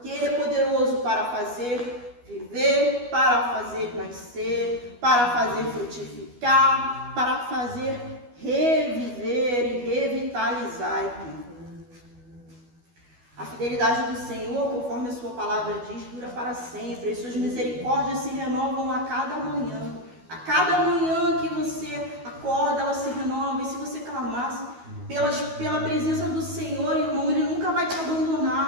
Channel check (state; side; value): late; left; 12 ms